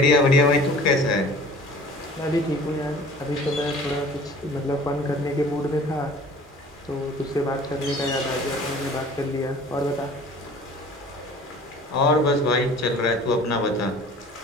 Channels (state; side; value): normal; both; correlation 0.46